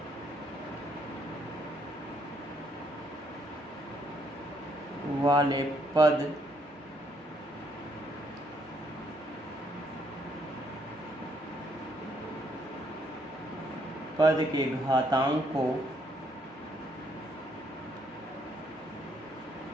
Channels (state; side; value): normal; both; correlation 0.70